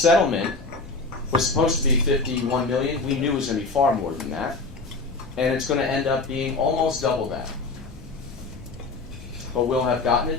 was supposed to be $51 million. We knew it was going to be far more than that. And it's going to end up being almost double that. But we'll have gotten it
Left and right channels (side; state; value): right; quieter; 3.8 dB